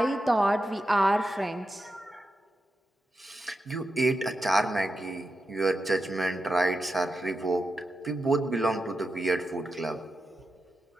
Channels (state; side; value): normal; both; correlation 0.88